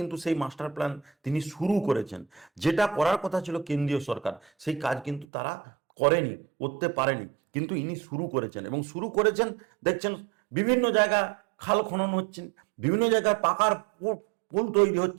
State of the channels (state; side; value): drops out; left; at 5.2 s